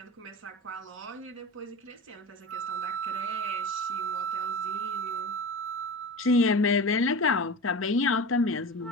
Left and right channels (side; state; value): both; normal; correlation 0.30